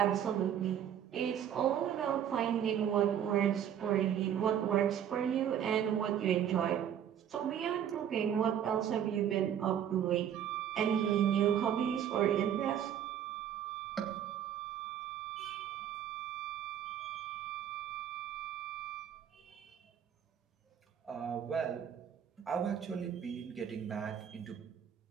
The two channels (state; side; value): quieter; left; 9.5 dB